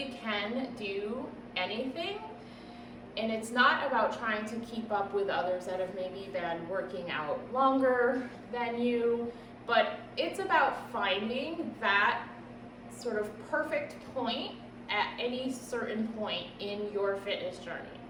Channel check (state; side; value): identical; both; correlation 1.00